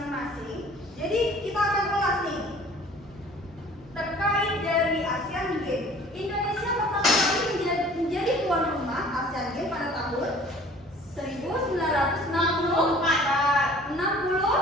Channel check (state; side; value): normal; both; correlation 0.49